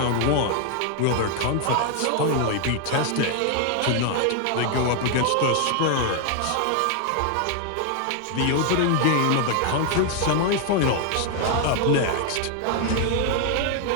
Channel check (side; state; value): both; different; correlation 0.00